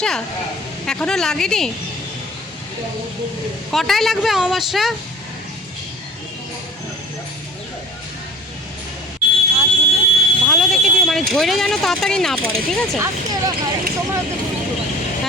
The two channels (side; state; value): both; normal; correlation 0.43